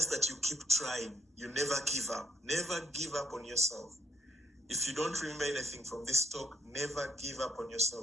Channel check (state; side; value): normal; both; correlation 0.71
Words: that you keep trying. You never give up. Never give up on yourself. If you don't remember anything from this talk, never give up on